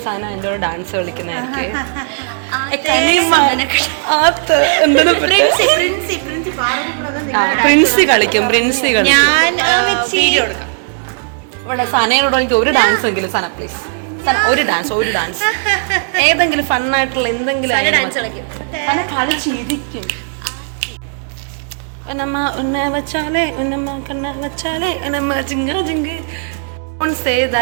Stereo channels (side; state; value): left; silent; digital silence